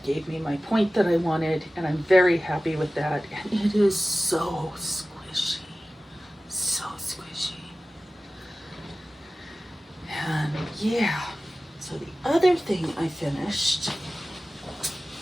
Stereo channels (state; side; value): normal; both; correlation 0.96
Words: gave me my point that I wanted, and I'm very happy with that. And it is so squishy, so squishy. And yeah, so the other thing I finished